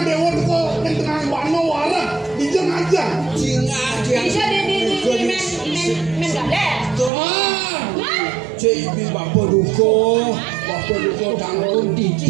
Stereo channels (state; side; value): drops out; left; at 7.1 s